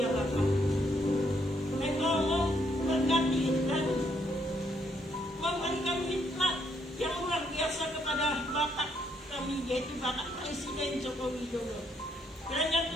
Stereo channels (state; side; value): normal; both; correlation 0.73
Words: ya Bapa. Engkau memberkati dan memberikan hikmat yang luar biasa kepada Bapak kami, yaitu Bapak Presiden Joko Widodo. Kiranya